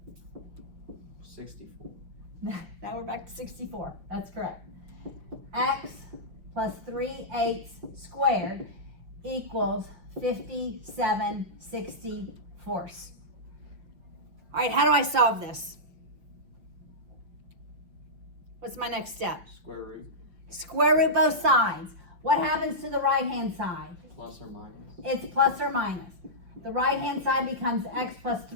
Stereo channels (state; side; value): late; left; 5.7 ms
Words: 64. Now we're back to 64. That's correct. X plus 3/8 squared equals 57/64. All right, how do I solve this? What's my next step? Square root. Square root both sides. What happens to the right-hand side? Plus or minus. It's plus or minus. The right-hand side becomes x plus